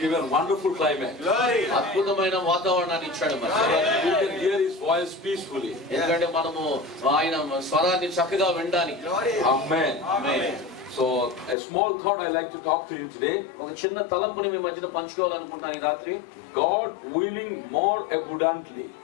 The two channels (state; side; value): drops out; right; at 11.6 s